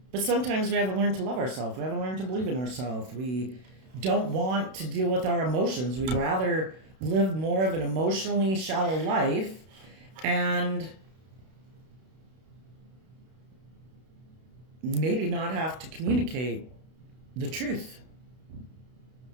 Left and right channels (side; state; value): left; late; 32 ms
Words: But sometimes we haven't learned to love ourselves. We haven't learned to believe in ourselves. We don't want to deal with our emotions. We'd rather live more of an emotionally shallow life and maybe not have to communicate the truth.